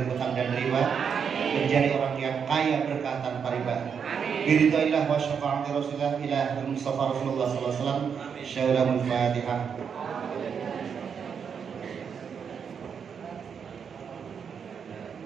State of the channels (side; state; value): left; quieter; 6.9 dB